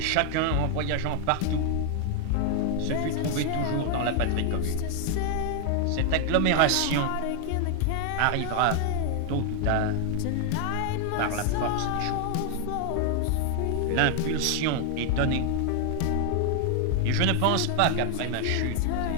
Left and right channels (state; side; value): different; both; correlation 0.00